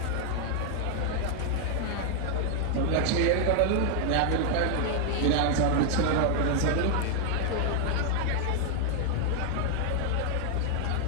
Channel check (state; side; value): different; both; correlation 0.00